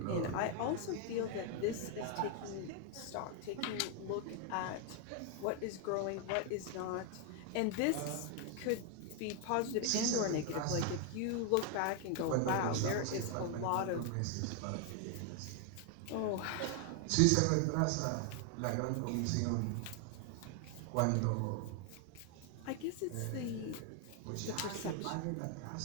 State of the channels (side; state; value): both; different; correlation 0.00